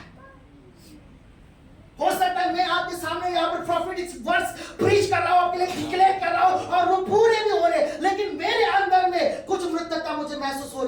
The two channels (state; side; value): identical; both; correlation 1.00